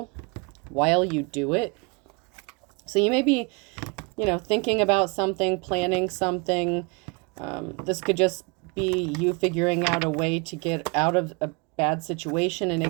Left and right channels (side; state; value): left; quieter; 29.6 dB